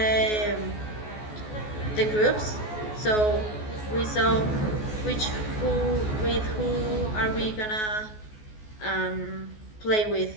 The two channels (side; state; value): right; late; 14 ms